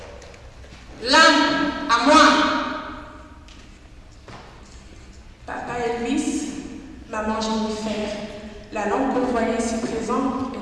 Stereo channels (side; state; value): both; identical; correlation 1.00